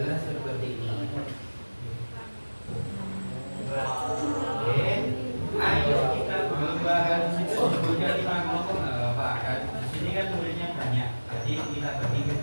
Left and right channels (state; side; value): inverted; both; correlation -1.00